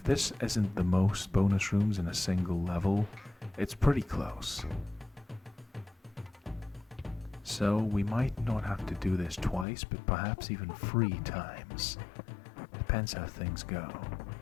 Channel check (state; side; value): drops out; right; at 9.7 s